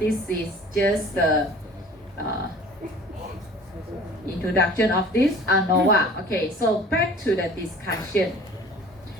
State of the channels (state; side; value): normal; both; correlation 0.46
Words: is just the introduction of this ANOVA. Okay, so back to the discussion.